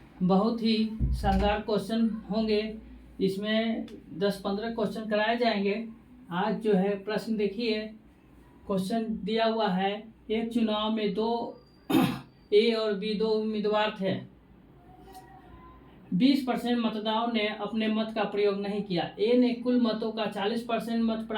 बहुत ही शानदार क्वेश्चन होंगे। इसमें 10-15 क्वेश्चन कराए जाएंगे। आज जो है प्रश्न देखिए, क्वेश्चन दिया हुआ है। एक चुनाव में दो ए और बी दो उम्मीदवार थे। 20% मतदाताओं ने अपने मत का प्रयोग नहीं किया। ए ने कुल मतों का 40% मत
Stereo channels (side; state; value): both; identical; correlation 1.00